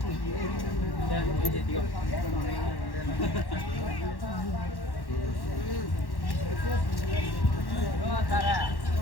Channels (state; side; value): late; right; 1.1 ms